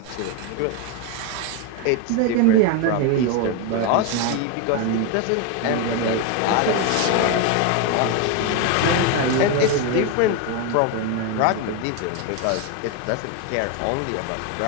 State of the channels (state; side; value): different; both; correlation 0.02